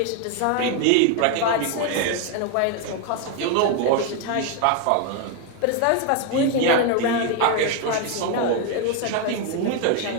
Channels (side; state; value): both; different; correlation 0.01